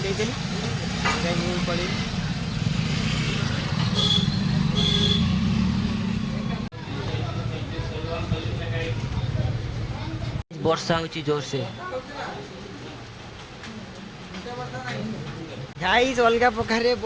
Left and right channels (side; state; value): both; identical; correlation 1.00